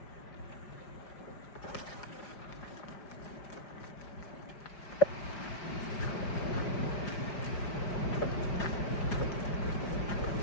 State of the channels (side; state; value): right; late; 5.0 ms